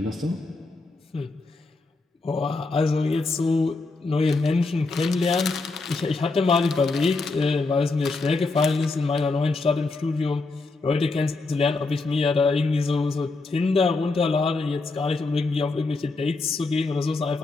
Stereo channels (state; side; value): quieter; right; 3.6 dB